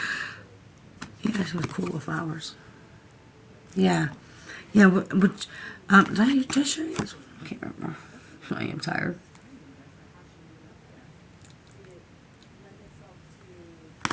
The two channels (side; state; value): both; identical; correlation 1.00